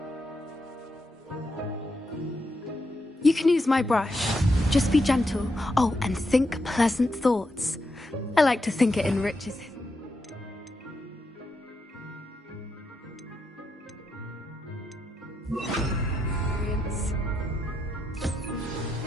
You can use my brush. Just be gentle. Oh, and think pleasant thoughts. I like to think it enriches his... experience.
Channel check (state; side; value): normal; both; correlation 0.83